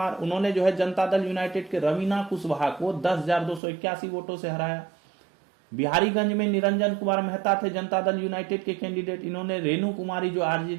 उन्होंने जो है जनता दल यूनाइटेड के रवीना कुशवाहा को 10,281 वोटों से हराया। बिहारीगंज में निरंजन कुमार मेहता थे जनता दल यूनाइटेड के कैंडिडेट, इन्होंने रेणु कुमारी जो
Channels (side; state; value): left; drops out; at 3.6 s